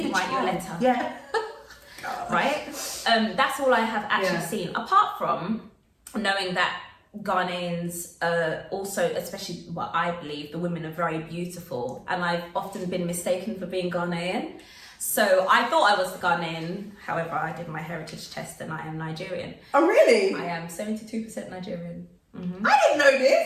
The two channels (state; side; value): identical; both; correlation 1.00